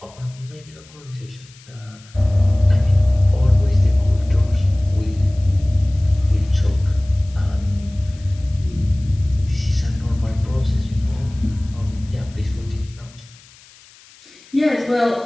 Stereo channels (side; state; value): left; noise; hiss, 25 dB below the sound